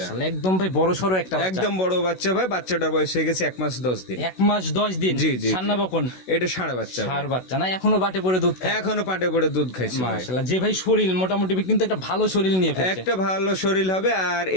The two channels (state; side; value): late; right; 16 ms